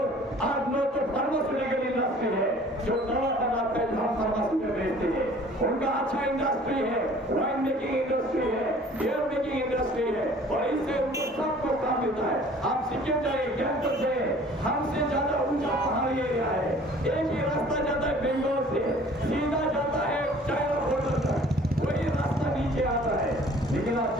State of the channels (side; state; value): both; normal; correlation 0.51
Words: 8-9 तो फार्मास्यूटिकल इंडस्ट्री है जो दवा बनाते हैं, हम फार्मास्यूटिकल बेचते हैं, उनका अच्छा इंडस्ट्री है, वाइन मेकिंग इंडस्ट्री है, बियर मेकिंग इंडस्ट्री है और इससे उनको सबको काम मिलता है। आप सिक्किम जाइए, कैंपस जाइए, हमसे ज्यादा ऊंचा पहाड़ी एरिया है, एक ही रास्ता जाता है बेंगलोर से, सीधा जाता है चाइना बॉर्डर तक, वही रास्ता नीचे आता है। लेकिन आप